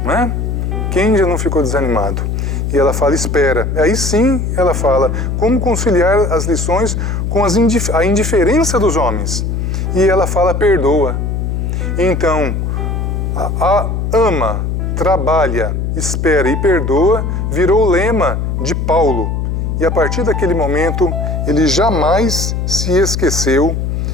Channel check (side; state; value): left; noise; hum, 1 dB below the sound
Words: Não é? Quem já não ficou desanimado? E ela fala: espera. Aí sim, ela fala: como conciliar as lições com a indiferença dos homens? E ela fala: perdoa. Então, ama, trabalha, espera e perdoa virou o lema de Paulo. E a partir daquele momento, ele jamais se esqueceu